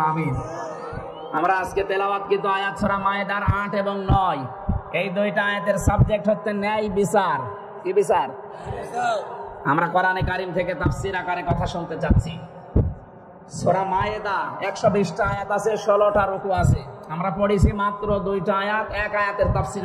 আমিন। আমরা আজকে তেলাওয়াতকৃত আয়াত সূরা মায়েদার 8 এবং 9, এই 2টা আয়াতের সাবজেক্ট হচ্ছে ন্যায় বিচার। কি বিচার? আমরা কোরআনে কারীম থেকে তাফসীর আকারে কথা শুনতে যাচ্ছি। সূরা মায়েদা 120টা আয়াত আছে, 16টা রুকু আছে। আমরা পড়েছি মাত্র 2টা আয়াত, এক আয়াতের তাফসীর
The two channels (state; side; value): identical; both; correlation 1.00